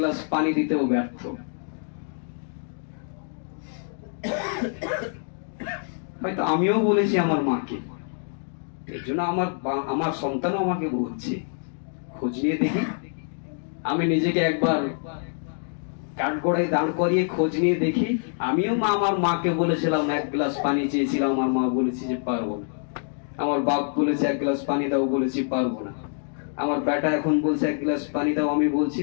পানি দিতেও ব্যর্থ। হয়তো আমিও বলেছি আমার মাকে, এর জন্য আমার সন্তানও আমাকে বলছে। খোঁজ নিয়ে দেখি, আমি নিজেকে একবার কাঠগড়ায় দাঁড় করিয়ে খোঁজ নিয়ে দেখি। আমিও আমার মাকে বলেছিলাম এক গ্লাস পানি চেয়েছিলাম, আমার মা বলেছি যে পারবো না। আমার বাপ বলেছে এক গ্লাস পানি দাও, বলেছি পারবো না। আমার বেটা এখন বলছে এক গ্লাস পানি দাও, আমি বলছি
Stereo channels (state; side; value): silent; right; 61 dB below the other